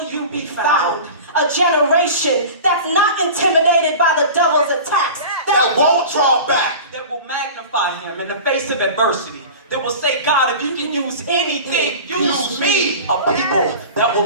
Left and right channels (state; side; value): inverted; both; correlation -0.36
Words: you be found? A generation that's not intimidated by the devil's attacks. that won't draw back. That will magnify him in the face of adversity. That will say, God, if you can use anything, use me. A people that